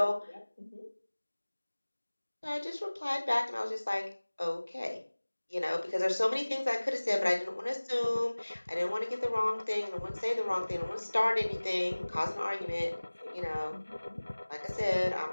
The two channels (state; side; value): inverted; both; correlation -1.00